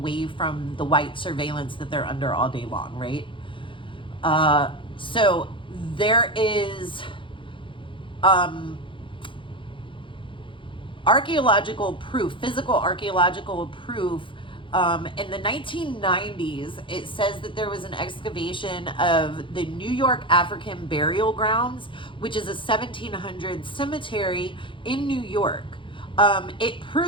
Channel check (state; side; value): late; right; 0.25 ms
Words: from the white surveillance that they're under all day long, right? So there is archaeological proof, physical archaeological proof. In the 1990s, it says that there was an excavation of the New York African Burial Grounds, which is a 1700s cemetery in New York. It